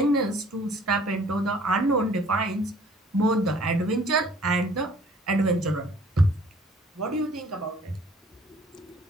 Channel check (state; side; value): normal; both; correlation 0.55